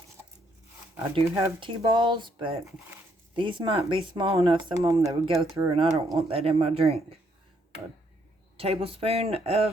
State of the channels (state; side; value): normal; both; correlation 0.71